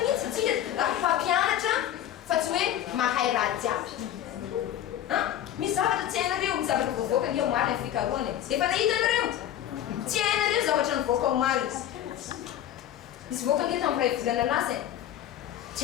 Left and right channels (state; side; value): quieter; right; 11.5 dB